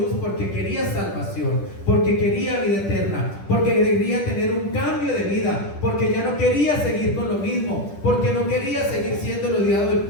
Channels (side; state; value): right; late; 10 ms